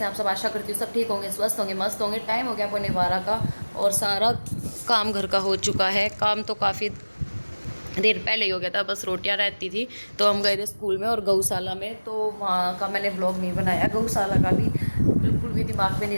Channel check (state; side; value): inverted; both; correlation -1.00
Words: आप सब? आशा करती हूँ सब ठीक होंगे, स्वस्थ होंगे, मस्त होंगे। टाइम हो गया पौने 12 का और सारा काम घर का हो चुका है। काम तो काफ़ी देर पहले ही हो गया था, बस रोटियां रहती थी। तो हम गए थे स्कूल में और गौशाला में, तो वहाँ का मैंने व्लॉग नहीं बनाया। गौशाला का भी बिल्कुल भी दिमाग में नहीं